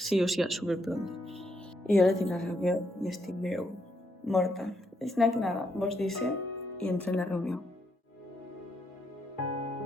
o sigui, superpronte. I ara tinc la reunió i estic veu morta. És que nada, vos dice i entro en la reunió.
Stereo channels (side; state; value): both; normal; correlation 0.77